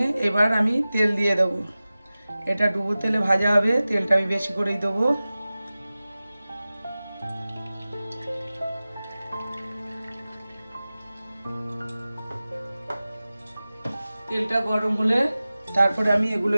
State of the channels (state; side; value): inverted; both; correlation -0.97